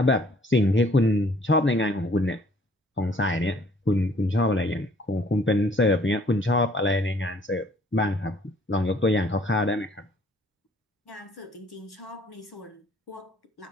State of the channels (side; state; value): both; normal; correlation 0.59